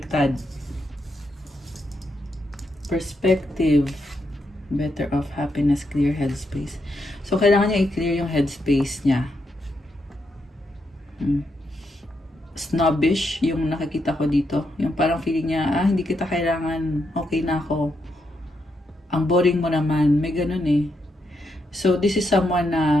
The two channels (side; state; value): both; normal; correlation 0.81